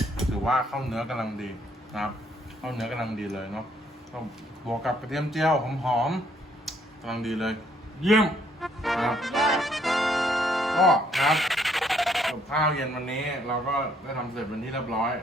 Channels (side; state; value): both; normal; correlation 0.67